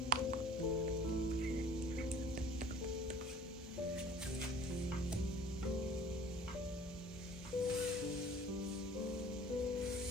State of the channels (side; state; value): both; normal; correlation 0.49